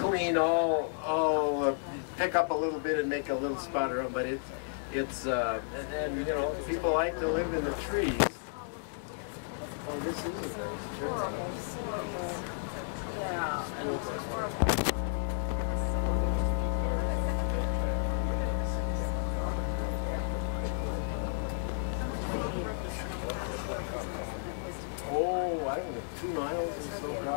all pick up a little bit and make a little spot around, but it's and you know, people like to live in the trees. Oh, this is a nice tree. Yeah. Oh, I don't know, 2 miles or so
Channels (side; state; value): right; silent; digital silence